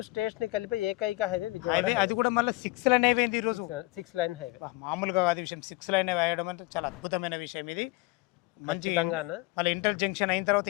స్టేట్స్ని కలిపే ఏకైక హైవే విజయవాడ హైవే అది కూడా మళ్ళీ 6 లైన్ అయిపోయింది ఈరోజు. 6 లైన్ హైవే. మామూలుగా కాదు విషయం, 6 లైన్ వేయడం అంటే చాలా అద్భుతమైన విషయం ఇది. మంచి ఖచ్చితంగా అన్న. మళ్ళీ ఇంటర్ జంక్షన్ అయిన తర్వాత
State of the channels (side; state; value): right; quieter; 22.0 dB